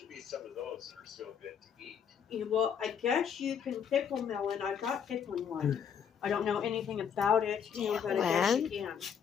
be some of those that are still good to eat. Well, I guess you can pickle melon. I've got pickling one. I don't know anything about it, but I guess you can.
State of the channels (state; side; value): quieter; right; 7.6 dB